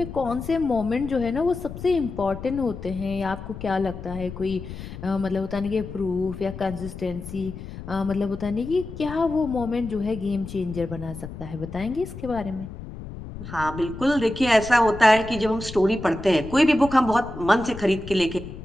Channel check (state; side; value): noise; left; rumble, 11 dB below the sound